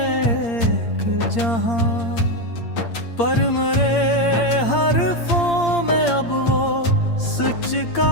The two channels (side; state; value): right; late; 8.7 ms